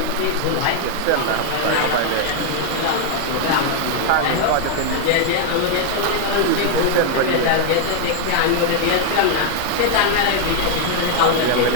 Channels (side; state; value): both; different; correlation 0.00